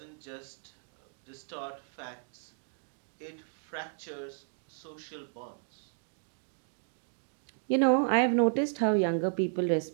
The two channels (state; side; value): silent; left; digital silence